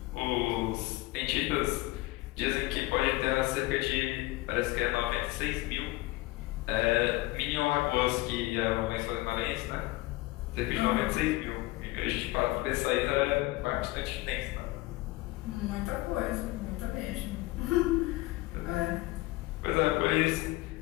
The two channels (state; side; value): quieter; right; 19.9 dB